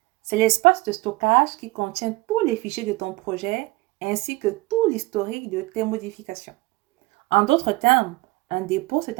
C'est l'espace de stockage qui contient tous les fichiers de ton projet ainsi que tout l'historique de tes modifications. En d'autres termes, un dépôt, c'est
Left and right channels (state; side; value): quieter; left; 22.0 dB